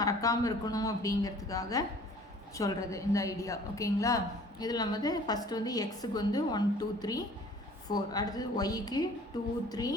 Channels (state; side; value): normal; both; correlation 0.51